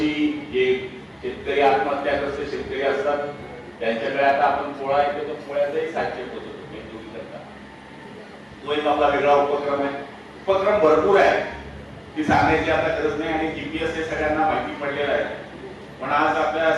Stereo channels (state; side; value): identical; both; correlation 1.00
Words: जे शेतकरी आत्महत्याग्रस्त शेतकरी असतात त्यांच्याकडे आता आपण पोळा येतो, तर पोळ्याचाही साहित्य होतो तो एक आपला वेगळा उपक्रम आहे. उपक्रम भरपूर आहे, ती सांगायची आता गरज नाही आणि जीपीएस हे सगळ्यांना माहिती पडलेलं आहे. पण आज आपल्या